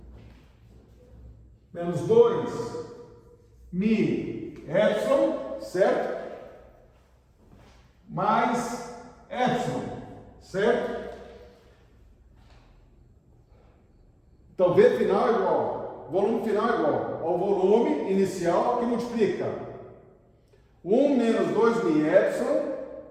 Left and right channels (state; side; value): identical; both; correlation 1.00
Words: Menos 2 mi epsilon, certo? Mais epsilon, certo? Então, V final é igual, volume final é igual ao volume inicial que multiplica 1 menos 2 mi epsilon